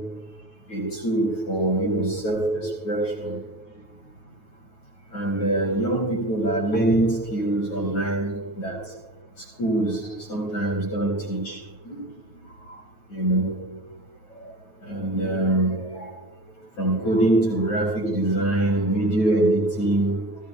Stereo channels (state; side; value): late; right; 9.3 ms